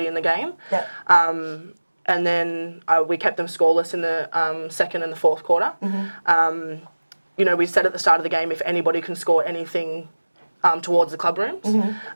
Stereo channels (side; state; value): both; inverted; correlation -1.00